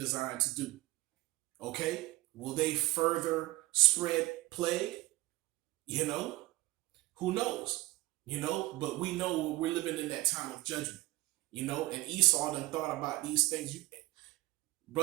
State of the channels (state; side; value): quieter; left; 20.3 dB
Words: to do? Okay, will they further spread plague? You know, who knows? But we know we're living in that time of judgment. And Esau then thought about these things.